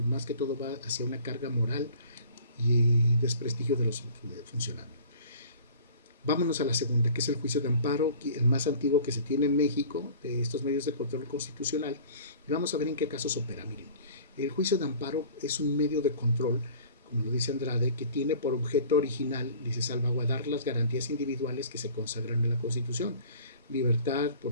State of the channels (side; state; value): both; inverted; correlation -0.46